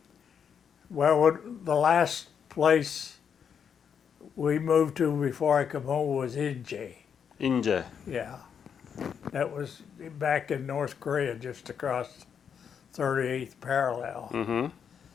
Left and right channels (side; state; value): right; quieter; 7.4 dB